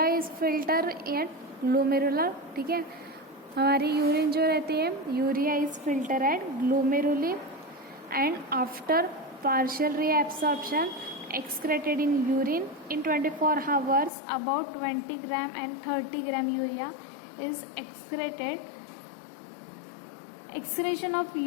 is filter at glomerular, ठीक है. हमारी urine जो रहती है, urea is filter at glomeruli and after partial reabsorption excreted in urine in 24 hours. About 20 gram and 30 gram urea is excreted. Excretion of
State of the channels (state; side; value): drops out; right; at 14.1 s